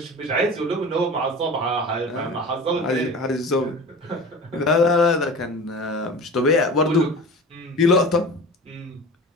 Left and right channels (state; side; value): normal; both; correlation 0.35